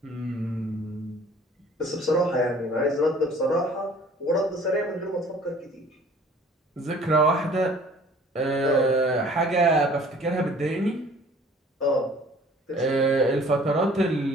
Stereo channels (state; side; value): normal; both; correlation 0.52